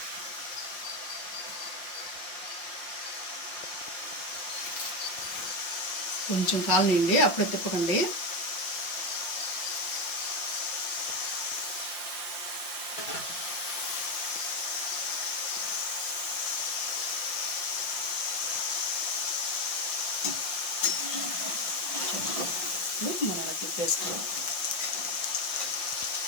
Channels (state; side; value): late; right; 5.8 ms